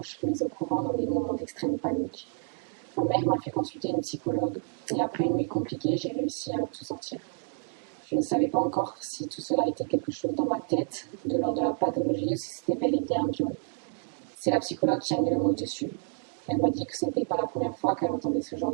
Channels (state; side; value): silent; left; 55 dB below the other